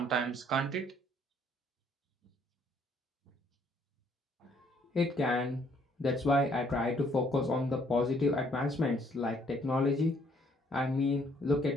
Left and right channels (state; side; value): normal; both; correlation 0.65